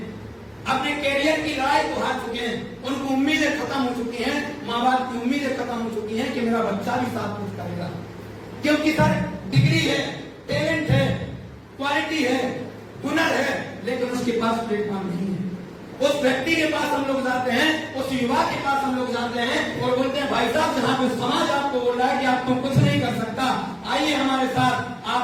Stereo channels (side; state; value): both; identical; correlation 1.00